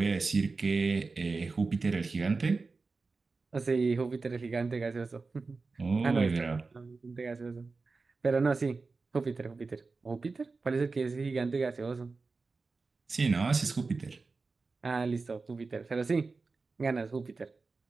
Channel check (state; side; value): quieter; left; 4.1 dB